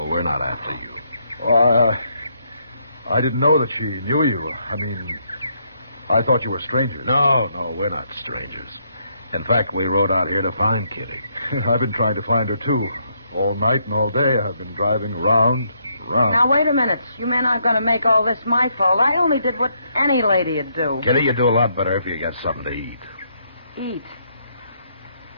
We're not after you. I didn't know that she knew you. I mean, I thought you were strangers. No, we're not strangers. In fact, we rode out here to find Kitty. I've been trying to find her, too. All night and all day, I've been driving around. Now, wait a minute. You men aren't going to make all this my fault. I only did what any lady'd do. Kitty, you do a lot better if you get something to eat. Eat?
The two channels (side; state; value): both; inverted; correlation -0.74